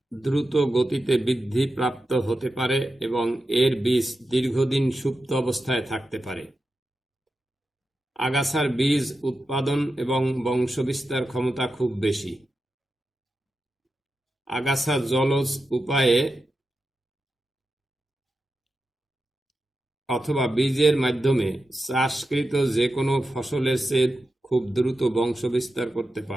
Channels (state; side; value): normal; both; correlation 0.90